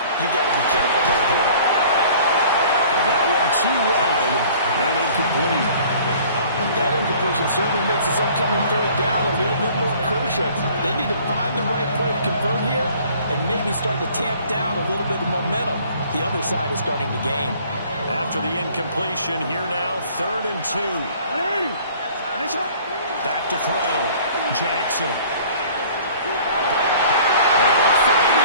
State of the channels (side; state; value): both; inverted; correlation -0.52